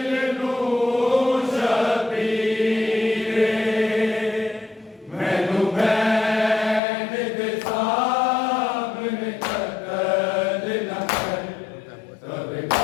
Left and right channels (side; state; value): right; drops out; at 6.8 s